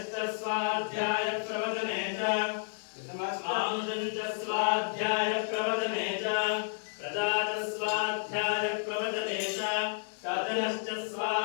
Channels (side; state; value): right; silent; 57 dB below the other